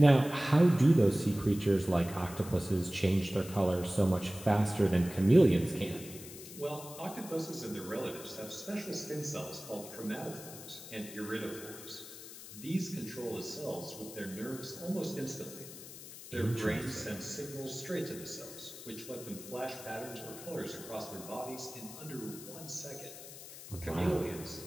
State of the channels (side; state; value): left; noise; hiss, 14 dB below the sound